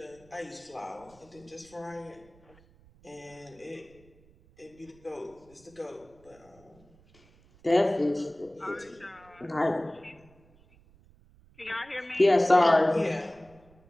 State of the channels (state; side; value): noise; right; rumble, 28 dB below the sound